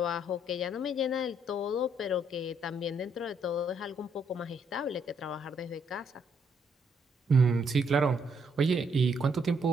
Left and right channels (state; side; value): normal; both; correlation 0.71